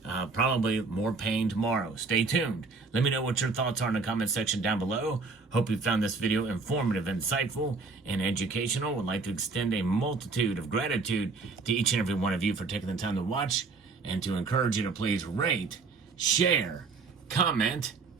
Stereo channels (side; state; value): left; quieter; 4.2 dB